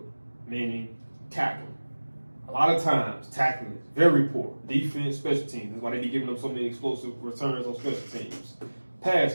meaning tackling. A lot of times, tackling is very poor. Defense, special teams. That's why they be giving them so many explosive returns on special teams. Pass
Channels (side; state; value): both; inverted; correlation -1.00